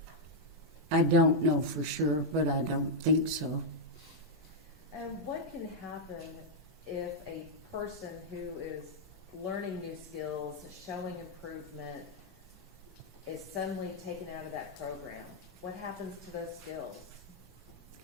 I don't know for sure, but I don't think so. And what can happen if a person who is learning new skills, showing improvement, is suddenly taken out of that program? What happens to those skills?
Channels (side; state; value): both; normal; correlation -0.03